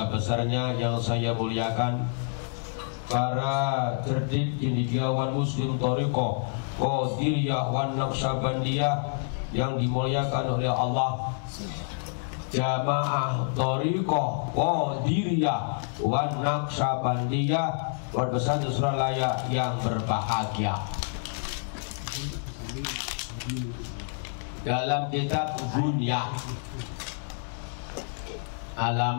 besarnya yang saya muliakan, para cerdik cendekiawan Muslim Thariqah Qadiriyah wan Naqsyabandiyah yang dimuliakan oleh Allah, Jamaah Thariqah Qadiriyah wan Naqsyabandiyah Pondok Pesantren Suralaya yang berbahagia. Dalam kitab Bunyah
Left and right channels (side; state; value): right; silent; digital silence